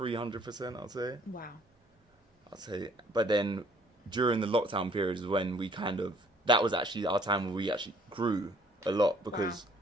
I'd say. Wow. I'd say. But then, during the lockdown period is when that was actually our time where we actually grew a lot, because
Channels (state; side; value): normal; both; correlation 0.59